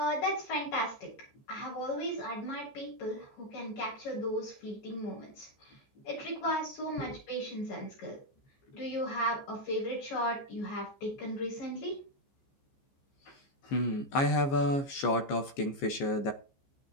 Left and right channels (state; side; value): late; right; 15 ms